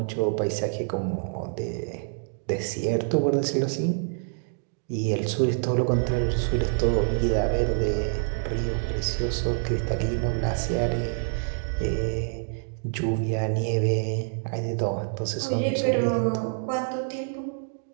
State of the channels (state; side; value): silent; left; digital silence